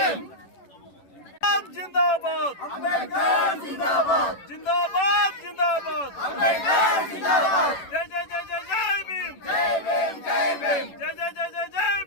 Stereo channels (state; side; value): late; right; 11 ms